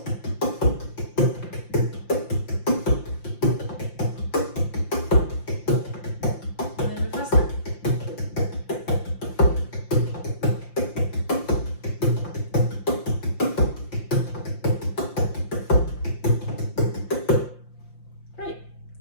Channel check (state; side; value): late; right; 5.8 ms